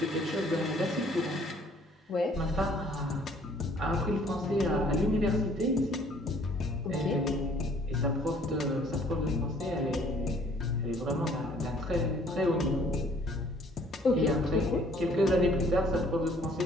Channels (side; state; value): both; normal; correlation 0.58